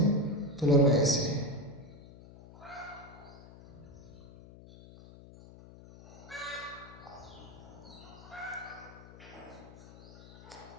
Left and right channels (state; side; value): noise; left; hum, 18 dB below the sound